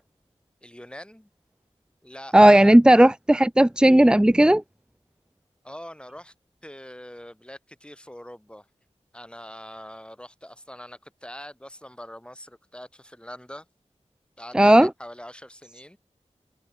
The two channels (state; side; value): normal; both; correlation 0.98